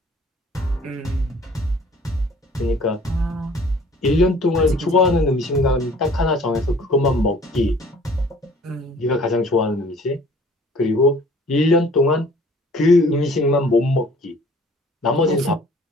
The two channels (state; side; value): normal; both; correlation 0.52